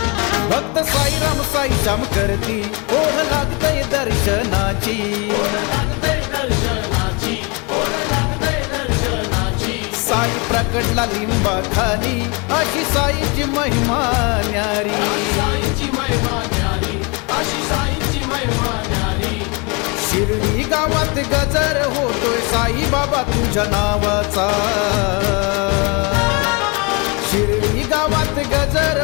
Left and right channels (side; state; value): right; quieter; 30.5 dB